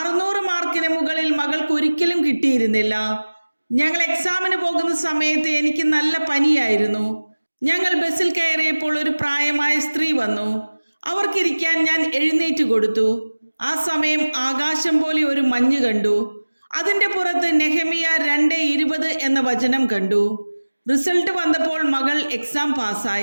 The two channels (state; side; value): inverted; both; correlation -1.00